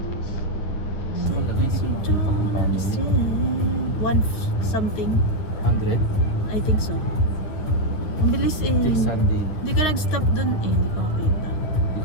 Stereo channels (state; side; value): late; right; 9.6 ms